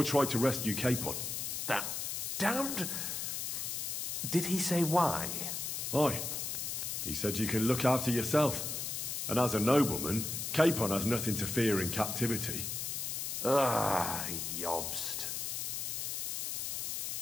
try to rescue Capon. That damned... Did he say why? Aye. He said you can look after yourself. And as a nobleman, Capon has nothing to fear in captivity. Ah, Jobst.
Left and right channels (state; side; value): noise; left; hiss, 3 dB below the sound